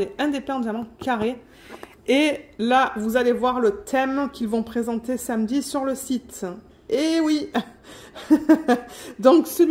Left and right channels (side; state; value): both; identical; correlation 1.00